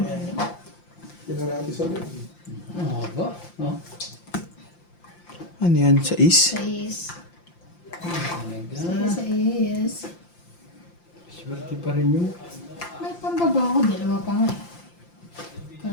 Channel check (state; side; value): late; right; 5.8 ms